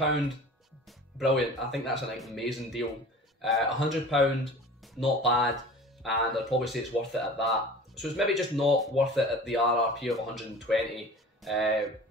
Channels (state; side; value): normal; both; correlation 0.40